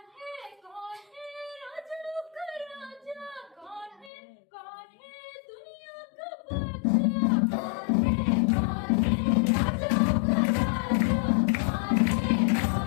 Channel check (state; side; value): drops out; right; at 4.1 s